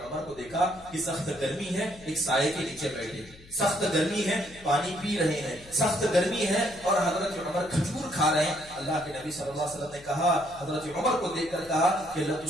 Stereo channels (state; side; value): noise; left; hum, 22 dB below the sound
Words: عمر کو دیکھا کہ سخت گرمی ہے، ایک سائے کے نیچے بیٹھے، سخت گرمی ہے، پانی پی رہے ہیں، سخت گرمی ہے اور حضرت عمر کھجور کھا رہے ہیں۔ اللہ کے نبی صلی اللہ علیہ وسلم نے کہا، حضرت عمر کو دیکھ کر کہا کہ